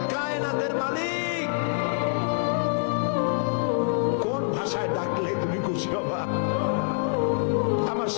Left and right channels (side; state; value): right; silent; 60 dB below the other